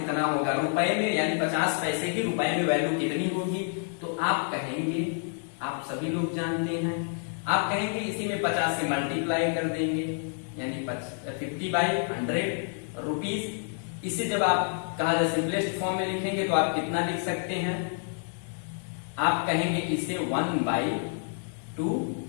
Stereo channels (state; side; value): silent; right; 56 dB below the other